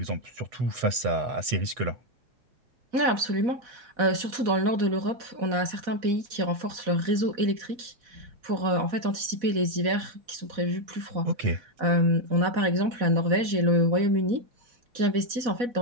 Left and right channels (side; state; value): left; late; 4.1 ms